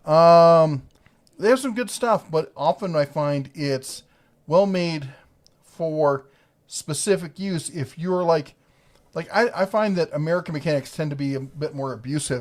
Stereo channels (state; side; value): identical; both; correlation 1.00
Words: They have some good stuff, but often I find it's well made for specific use. If you're like I find that American mechanics tend to be a bit more